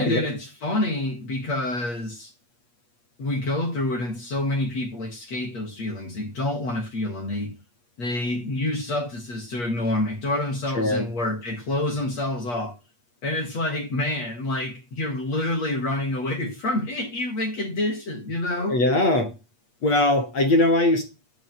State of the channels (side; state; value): right; late; 8.4 ms